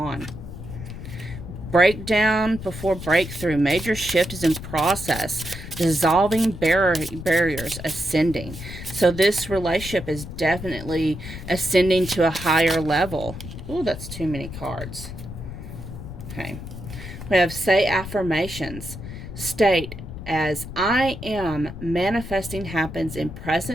Breakdown before breakthrough. Major shift is in process. Dissolving barriers, ascending. So this relationship is definitely ascending to a higher level. Ooh, that's too many cards. Okay. We have say affirmations. State as I am manifesting happens in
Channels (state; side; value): noise; left; rumble, 11 dB below the sound